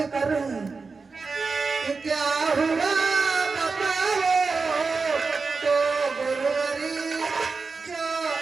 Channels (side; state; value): left; quieter; 4.4 dB